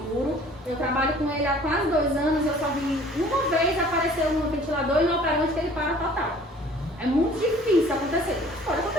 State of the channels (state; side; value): normal; both; correlation 0.51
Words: Eu trabalho com ele há quase 2 anos, eu só vi uma vez aparecer um ventilador e no operante que ele para total. É muito difícil acontecer. Pode